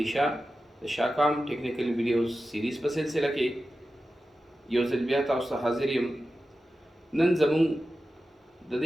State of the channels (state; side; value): normal; both; correlation 0.93